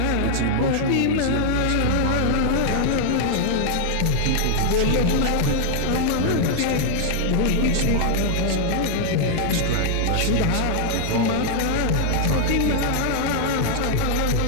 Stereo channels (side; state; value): both; different; correlation -0.01